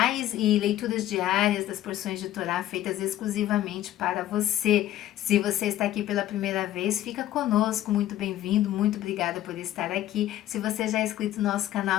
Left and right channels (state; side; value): quieter; right; 13.3 dB